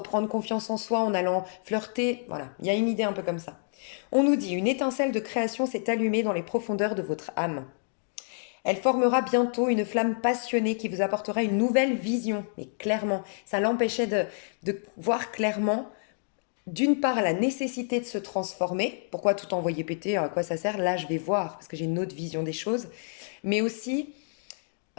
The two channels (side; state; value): right; silent; digital silence